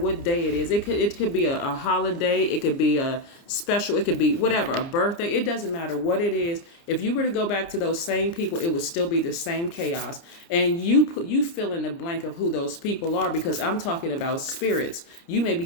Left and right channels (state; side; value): late; right; 29 ms